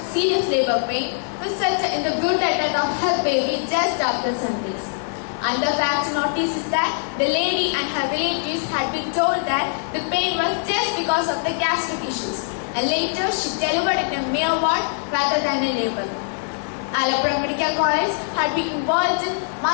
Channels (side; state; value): right; silent; digital silence